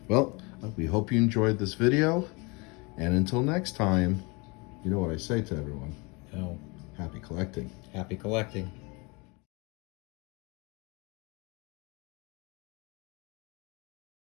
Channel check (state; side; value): quieter; right; 28.0 dB